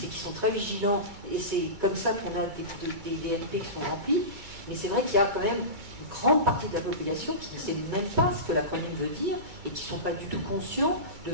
et qui sont très vigilants. Et c'est comme ça qu'on a des DMP qui sont remplis. Mais c'est vrai qu'il y a quand même une grande partie de la population qui ne sait même pas ce que l'acronyme veut dire et qui ne sont pas du tout conscients de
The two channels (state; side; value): late; left; 2.2 ms